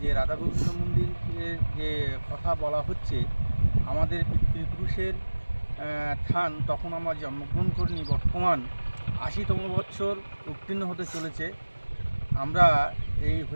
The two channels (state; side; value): inverted; both; correlation -1.00